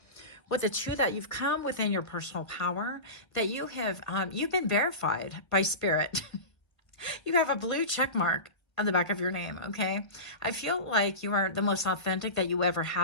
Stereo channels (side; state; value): right; late; 1.0 ms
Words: With the two, that you've come within your personal power, that you have, you've been verified by spirit. You have a blue check mark on the back of your name, okay? I feel like you are the most authentic that you ever